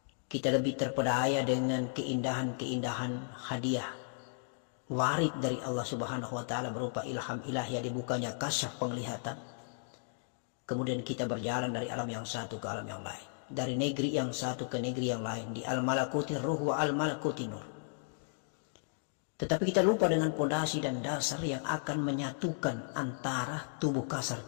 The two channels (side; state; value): right; silent; digital silence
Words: kita lebih terpedaya dengan keindahan-keindahan hadiah warid dari Allah Subhanahu wa taala berupa ilham ilahi, dibukanya kasyaf penglihatan. Kemudian kita berjalan dari alam yang satu ke alam yang lain, dari negeri yang satu ke negeri yang lain, di al-malakuti ruh wa al-malakuti nur. Tetapi kita lupa dengan pondasi dan dasar yang akan menyatukan antara tubuh kasar